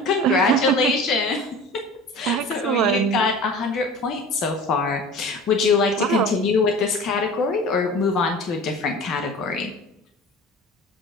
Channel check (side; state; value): both; normal; correlation 0.38